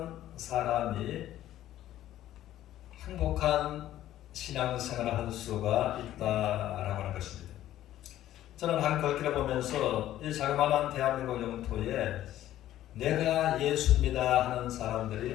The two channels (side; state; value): right; quieter; 13.2 dB